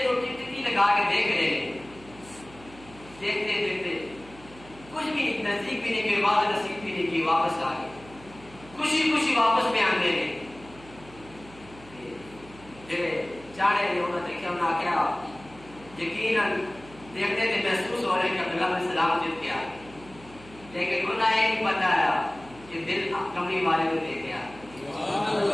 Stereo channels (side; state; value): right; noise; hum, 21 dB below the sound